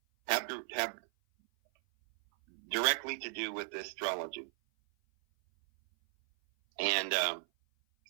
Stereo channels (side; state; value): left; silent; 54 dB below the other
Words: have directly to do with astrology. And